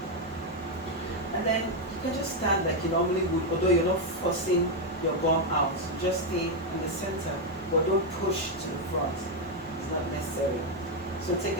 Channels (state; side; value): normal; both; correlation 0.03